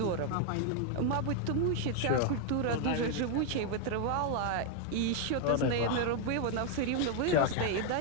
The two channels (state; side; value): different; both; correlation 0.00